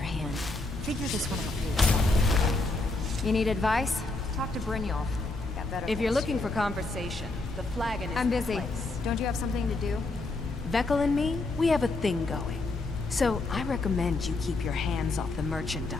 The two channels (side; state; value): right; quieter; 3.2 dB